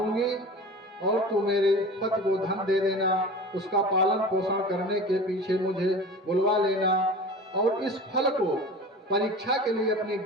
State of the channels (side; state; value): both; normal; correlation 0.36